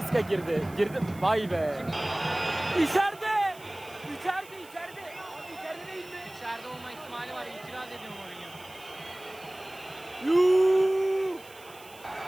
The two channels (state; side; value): noise; right; hiss, 22 dB below the sound